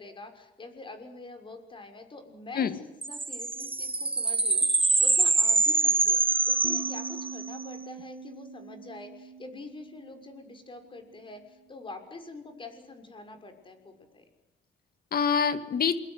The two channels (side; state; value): both; normal; correlation 0.12